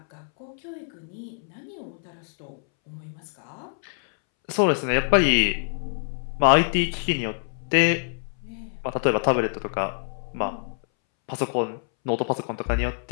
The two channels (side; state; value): right; silent; 61 dB below the other